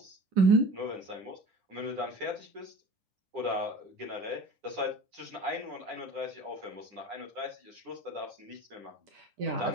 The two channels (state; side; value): late; left; 9.8 ms